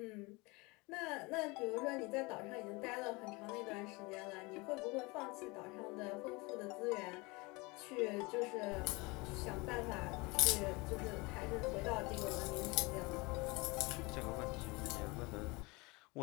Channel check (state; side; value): quieter; right; 25.5 dB